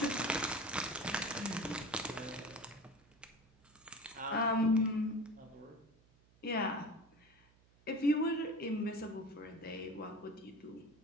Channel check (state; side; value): noise; right; hum, 30 dB below the sound